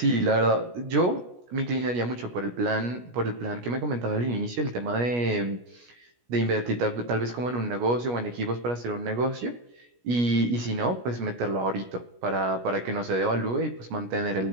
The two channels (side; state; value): left; late; 17 ms